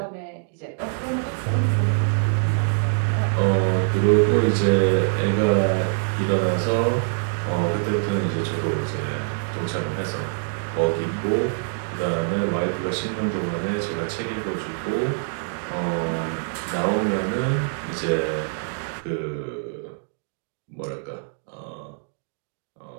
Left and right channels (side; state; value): left; silent; digital silence